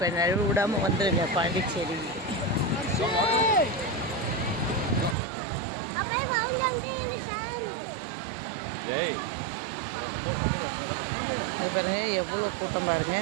நழுவு விடாமல் வந்துடுங்க பாண்டிச்சேரி. இது பாருங்க எவ்வளோ கூட்டம் பாருங்க.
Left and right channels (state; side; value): drops out; left; at 5.2 s